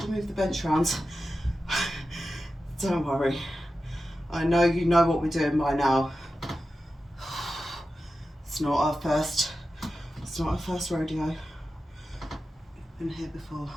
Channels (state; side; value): normal; both; correlation 0.92